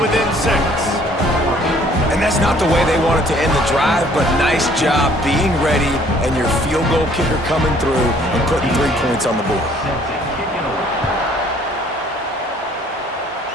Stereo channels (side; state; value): both; normal; correlation 0.59